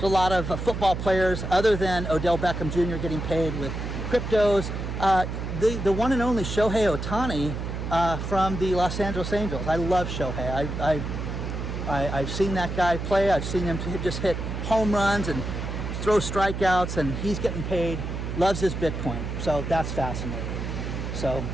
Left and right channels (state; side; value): noise; right; hum, 5 dB below the sound